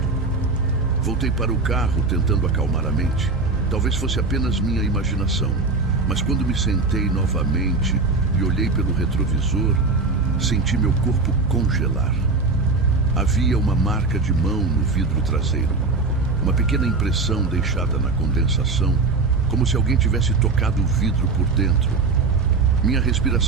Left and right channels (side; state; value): left; quieter; 3.9 dB